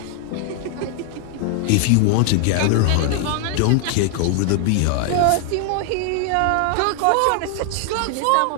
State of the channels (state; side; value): different; both; correlation 0.00